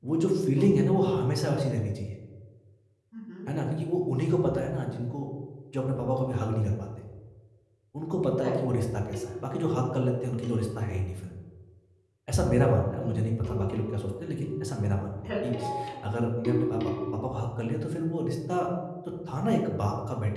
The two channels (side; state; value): both; identical; correlation 1.00